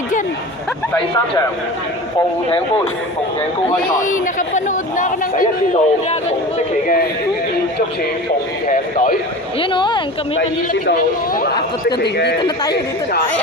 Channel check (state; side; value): normal; both; correlation 0.34